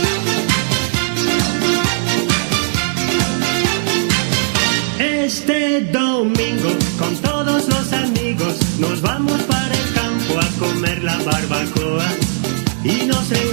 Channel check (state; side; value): silent; left; 62 dB below the other